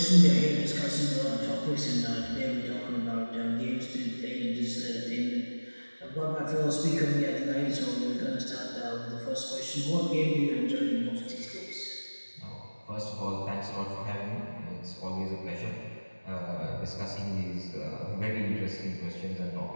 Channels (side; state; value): both; inverted; correlation -1.00